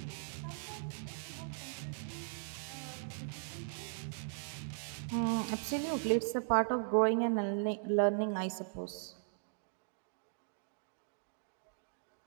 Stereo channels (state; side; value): silent; left; digital silence